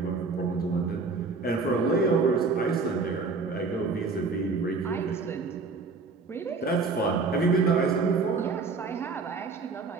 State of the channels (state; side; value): quieter; left; 4.3 dB